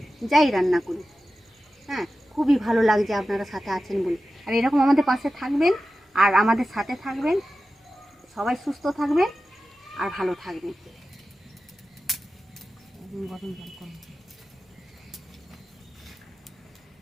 যাই রান্না করি। হ্যাঁ, খুবই ভালো লাগছে আপনারা সাথে আছেন বলে। আর এরকম আমাদের পাশে থাকবেন আর আমাদের সাথে থাকবেন, সবাই সুস্থ থাকবেন আর ভালো থাকবেন। গরম জল করুন।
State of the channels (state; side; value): normal; both; correlation 0.93